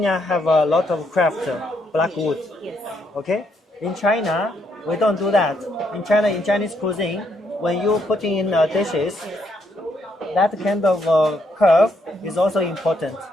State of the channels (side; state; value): both; normal; correlation 0.74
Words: have a lot of craft, black wood. Yes. Okay, in China we don't do that. In China, in Chinese cuisine, when you put in dishes, that kind of curve is also important.